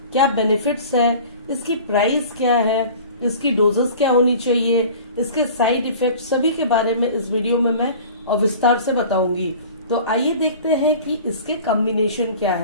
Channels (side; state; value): both; inverted; correlation -0.42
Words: क्या बेनिफिट्स है, इसकी प्राइस क्या है, इसकी डोजेस क्या होनी चाहिए, इसके साइड इफेक्ट सभी के बारे में इस वीडियो में मैं विस्तार से बताऊंगी। तो आइए देखते हैं कि इसके कॉम्बिनेशन क्या